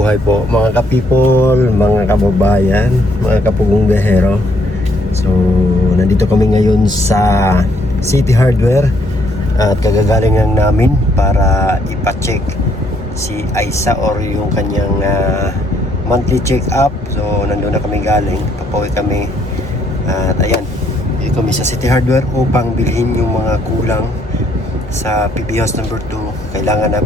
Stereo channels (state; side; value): normal; both; correlation 0.69